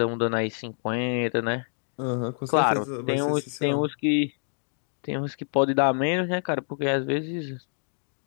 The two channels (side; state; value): right; silent; 60 dB below the other